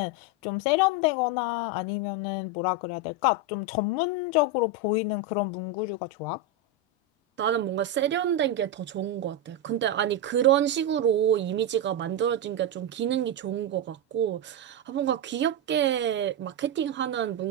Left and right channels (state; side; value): normal; both; correlation 0.07